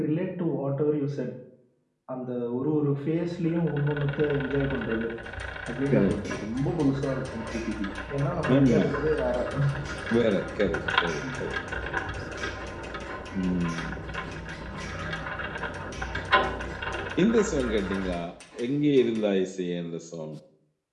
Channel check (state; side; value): identical; both; correlation 1.00